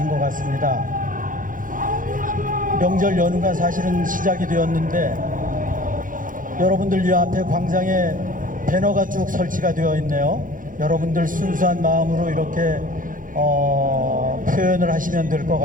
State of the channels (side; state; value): left; late; 0.39 ms